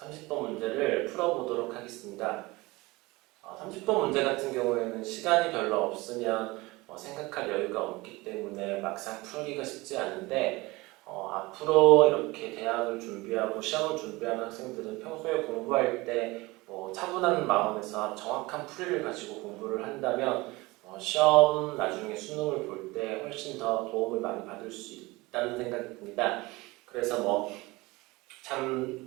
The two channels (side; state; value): left; quieter; 22.1 dB